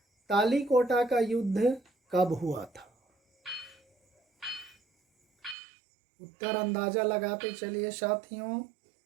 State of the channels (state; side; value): drops out; left; at 5.6 s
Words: तालीकोटा का युद्ध कब हुआ था? उत्तर अंदाजा लगाते चलिए साथियों।